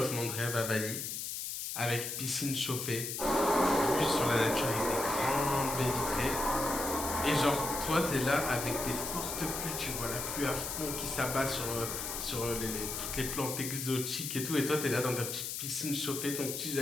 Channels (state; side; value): noise; left; hiss, 4 dB below the sound